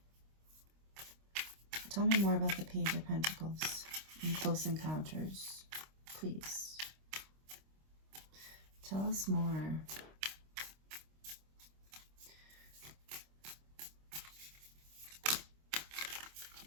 Tell me more about the Page of Pentacles and Close Encounters, please. Tell us more.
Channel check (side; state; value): left; late; 26 ms